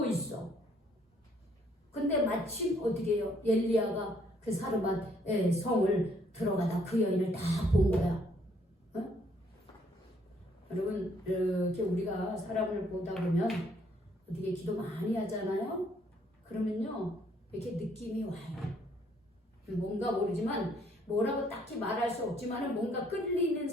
있어. 근데 마침 어떻게 해요? 엘리야가 그 사르밧의 성을 들어가다 그 여인을 다 본 거야. 여러분 이렇게 우리가 사람을 보다 보면 어떻게 기도 많이 하잖아요. 그러면요 이렇게 느낌이 와요. 뭔가 모르지만 뭐라고 딱히 말할 수 없지만 뭔가 끌리는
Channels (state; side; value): normal; both; correlation 0.66